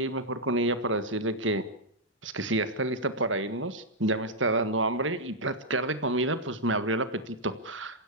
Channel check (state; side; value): normal; both; correlation -0.05